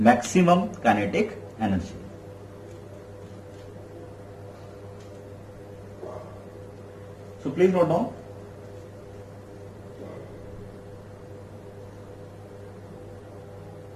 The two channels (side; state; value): both; identical; correlation 1.00